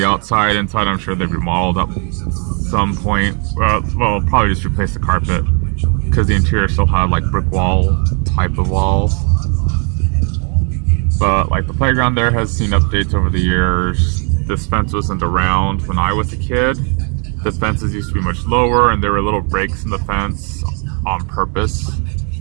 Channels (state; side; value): quieter; left; 38.9 dB